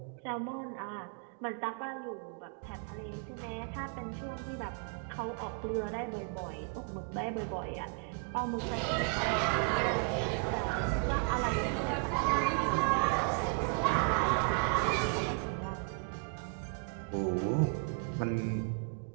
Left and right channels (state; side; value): quieter; left; 36.3 dB